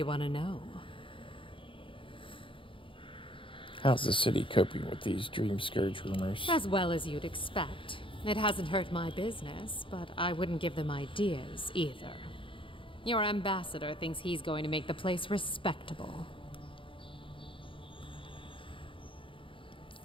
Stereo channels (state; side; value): late; right; 0.25 ms